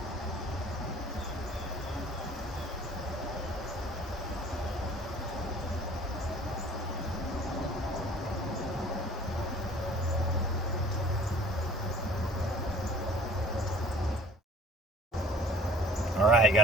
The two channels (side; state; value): both; normal; correlation 0.50